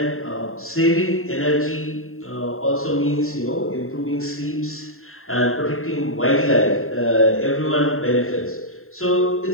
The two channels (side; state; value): right; late; 0.61 ms